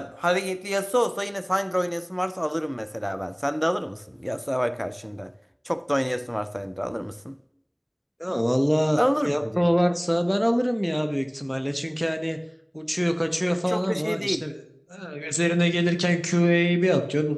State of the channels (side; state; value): both; identical; correlation 1.00